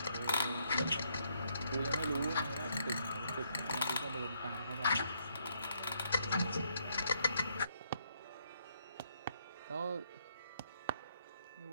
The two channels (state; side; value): inverted; both; correlation -0.73